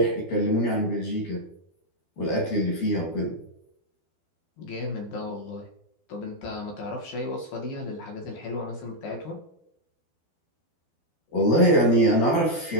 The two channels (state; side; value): late; right; 12 ms